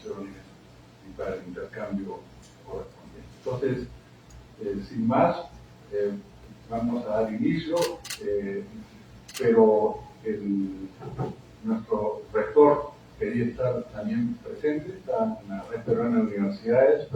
y para el intercambio correspondiente. Entonces, sin más, vamos a dar inicio, pero nuestro rector quería estar también presente, está en la Red Peruana de Universidades,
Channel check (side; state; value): both; identical; correlation 1.00